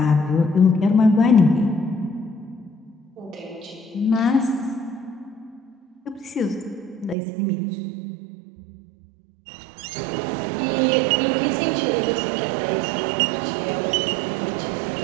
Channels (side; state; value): left; drops out; at 7.2 s